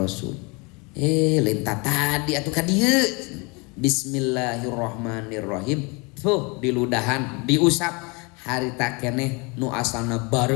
Lintah tadi atuh ka dieu. Bismillahirrahmanirrahim. Tuh diludahan, diusap. Harita keneh nu asalna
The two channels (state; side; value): quieter; right; 29.3 dB